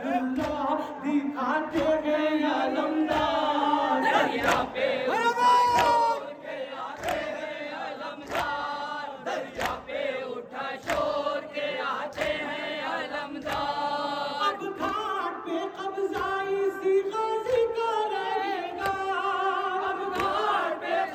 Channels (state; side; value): identical; both; correlation 1.00